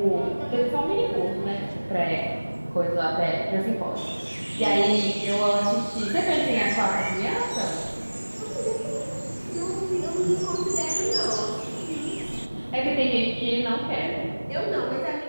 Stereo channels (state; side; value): inverted; both; correlation -1.00